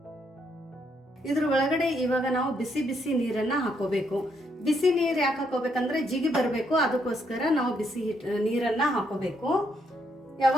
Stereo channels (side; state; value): both; normal; correlation 0.74